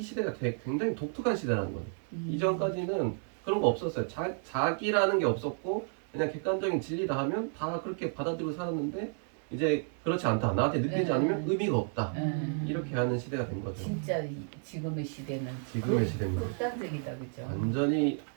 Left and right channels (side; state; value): left; silent; 57 dB below the other